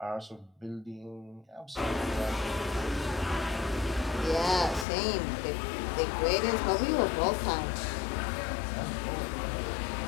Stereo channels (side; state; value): right; drops out; at 4.9 s